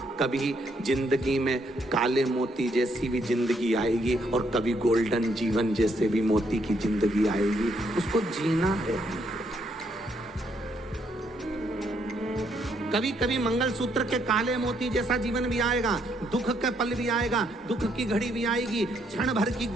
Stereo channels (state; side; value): normal; both; correlation 0.73